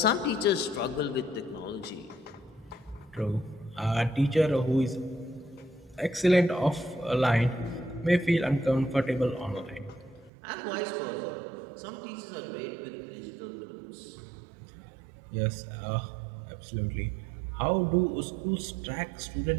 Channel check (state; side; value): drops out; left; at 10.3 s